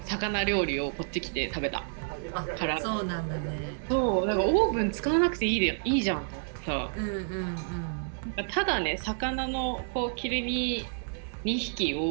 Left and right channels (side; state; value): left; silent; 58 dB below the other